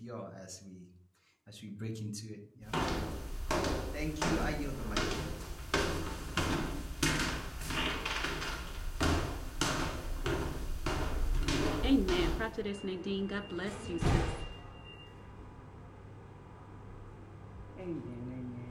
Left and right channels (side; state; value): both; identical; correlation 1.00